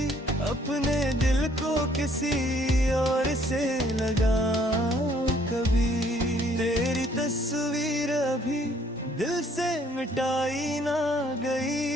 अपने दिल को किसी और से लगाऊं कभी। तेरी तस्वीर अभी दिल से मिटाई ना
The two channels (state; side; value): normal; both; correlation 0.63